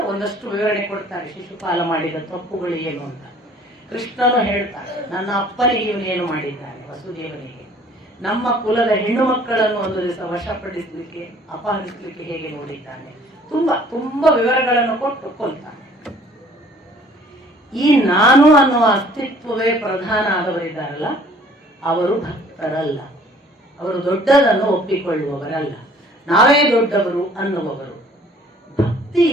ಒಂದಷ್ಟು ವಿವರಣೆ ಕೊಡ್ತಾರೆ, ಶಿಶುಪಾಲ ಮಾಡಿದ ತಪ್ಪುಗಳು ಏನು ಅಂತ. ಕೃಷ್ಣನು ಹೇಳ್ತಾರೆ, ನನ್ನ ಅಪ್ಪನಿಗೆ ಇವನೇನು ಮಾಡಿದ್ದಾನೆ, ವಸುದೇವನಿಗೆ, ನಮ್ಮ ಕುಲದ ಹೆಣ್ಣು ಮಕ್ಕಳನ್ನು ಒಂದು ದಿವಸ ವಶಪಡಿಸಲಿಕ್ಕೆ ಅಪಹರಿಸಲಿಕ್ಕೆ ಹೇಗೆ ನೋಡಿದ್ದಾನೆ, ತುಂಬಾ ವಿವರಗಳನ್ನು ಕೊಟ್ಟು ಕೊಲ್ತಾನೆ. ಈ ನಾನು ಅನ್ನುವ ಅಸ್ತಿತ್ವವೇ ಪ್ರಧಾನ ಆದವರಿದ್ದಾರಲ್ಲ, ಅವರು ಭಕ್ತರಲ್ಲ, ಅವರು ದೊಡ್ಡದನ್ನು ಒಪ್ಪಿಕೊಳ್ಳುವವರಲ್ಲ, ನಾವೇ ದೊಡ್ಡವರು ಅನ್ನುವವರು. ಭಕ್ತಿ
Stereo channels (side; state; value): both; normal; correlation 0.54